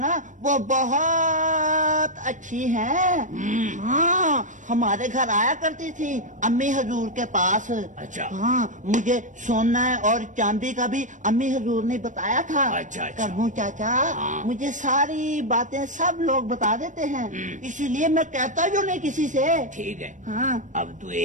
वो बहुत अच्छी है। हाँ, हमारे घर आया करती थी अम्मी हजूर के पास। अच्छा। हाँ, मुझे सोना और चांदी का भी अम्मी हजूर ने बताया था। अच्छा, अच्छा। करमू चाचा, हाँ। मुझे सारी बातें सब लोग बता देते हैं, इसीलिए मैं कहता जो नहीं किसी से। ठीक है। हाँ। अब तू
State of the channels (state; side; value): late; left; 0.37 ms